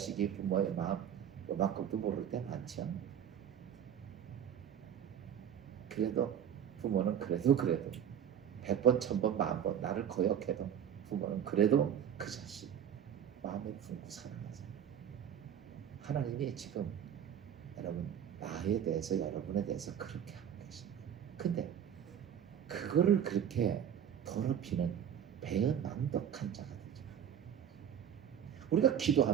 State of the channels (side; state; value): left; quieter; 9.1 dB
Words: 부모의 마음 요만큼도 모를 때 많죠. 그래도 부모는 그래도 100번, 1000번, 10,000번 나를 거역해도 부모는 그래도 그 자식 마음에 품고 사랑하세요. 하나님이 지금 여러분 나에 대해서, 여러분에 대해서 그렇게 하고 계십니다. 근데 그거를 그렇게 더럽히는 배은망덕한 자가 되지 말아요. 우리가